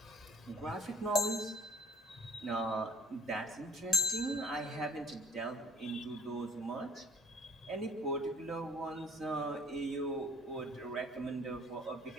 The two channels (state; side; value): normal; both; correlation 0.49